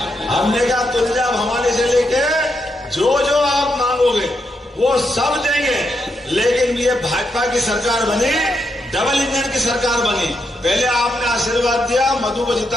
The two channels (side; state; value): both; normal; correlation 0.81